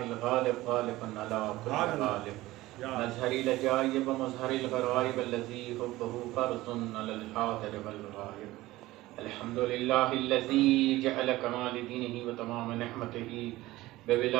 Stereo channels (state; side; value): quieter; left; 17.8 dB